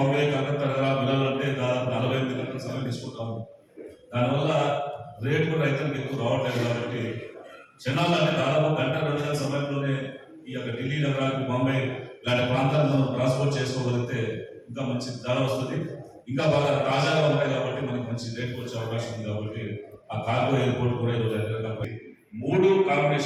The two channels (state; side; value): identical; both; correlation 1.00